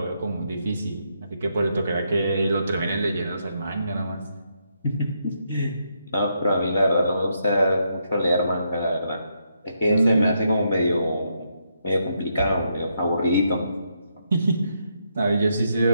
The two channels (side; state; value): both; inverted; correlation -0.79